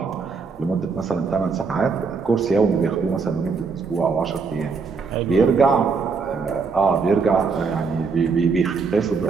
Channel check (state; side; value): quieter; left; 5.0 dB